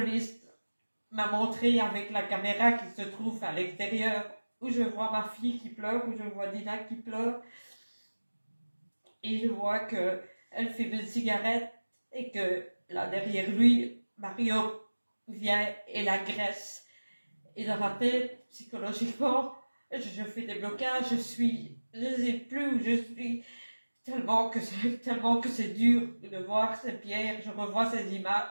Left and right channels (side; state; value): both; inverted; correlation -1.00